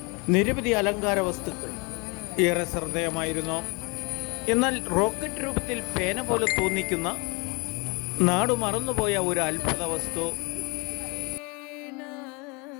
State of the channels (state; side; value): quieter; right; 29.7 dB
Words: നിരവധി അലങ്കാര വസ്തുക്കൾ ഏറെ ശ്രദ്ധേയമായിരുന്നു. എന്നാൽ റോക്കറ്റ് രൂപത്തിൽ പേന പോലെ തോന്നിക്കുന്ന നാടു മറന്നുപോയ ഒരു അത്ഭുത വസ്തു.